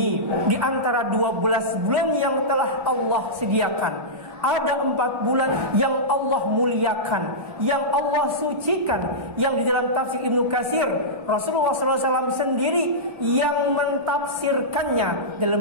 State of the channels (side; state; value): left; late; 1.4 ms